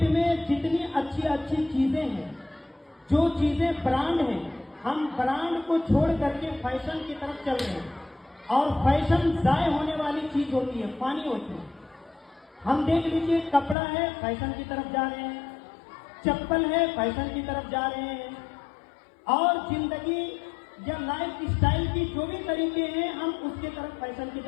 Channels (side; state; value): right; drops out; at 13.8 s